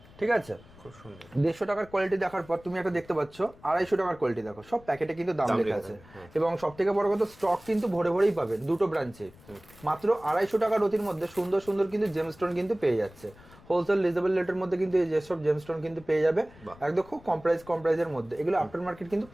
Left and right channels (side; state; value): left; noise; rumble, 23 dB below the sound